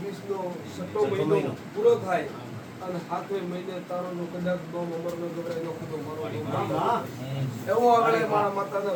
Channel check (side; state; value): both; identical; correlation 1.00